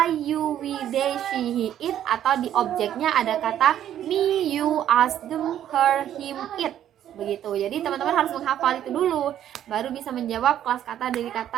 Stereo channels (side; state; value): left; quieter; 10.9 dB